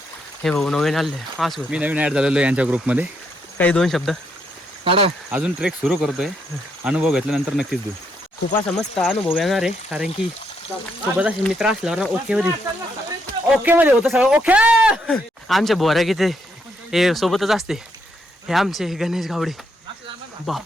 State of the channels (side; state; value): both; normal; correlation 0.76